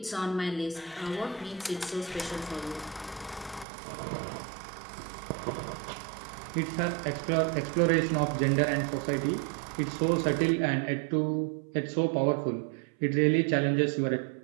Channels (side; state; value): left; drops out; at 3.7 s